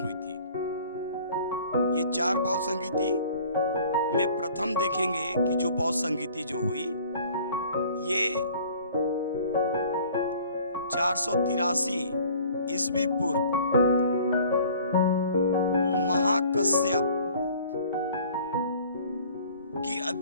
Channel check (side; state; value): both; inverted; correlation -0.51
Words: हुई थी। ये 4 बौद्ध संगीति में प्रथम देखेंगे कि जो बौद्ध संगीति जो हुई ये 483 ईस्वी पूर्व महाकश्यप की